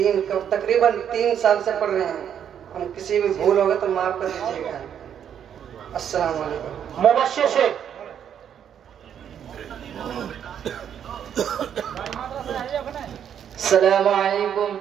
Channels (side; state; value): left; quieter; 8.9 dB